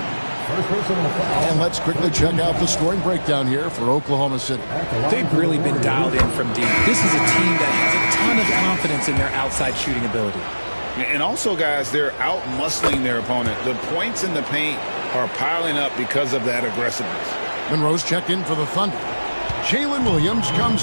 And let's quickly check out the scoring breakdown here for Oklahoma City. They've really been dialed in from deep. This is a team that has a ton of confidence in their outside shooting ability. And also, guys, they're out-muscling their opponent. The points in the paint are piling up because of that aggressiveness. Monroe's checked in for the Thunder. Jalen Williams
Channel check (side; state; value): both; inverted; correlation -1.00